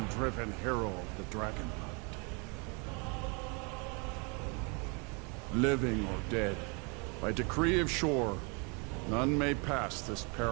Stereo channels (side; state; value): left; quieter; 32.8 dB